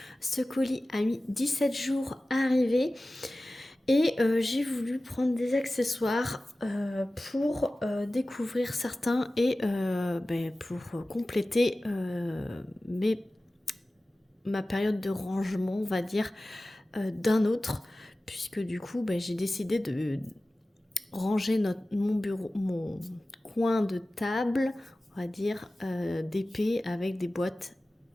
Ce colis a mis 17 jours à arriver et j'ai voulu prendre des accessoires pour découvrir certains et pour compléter ma période de rangement, on va dire, d'un autre, puisque du coup j'ai décidé de ranger mon bureau, mon coin de table, on va dire, d'épée avec des boîtes,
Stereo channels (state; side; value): normal; both; correlation 0.96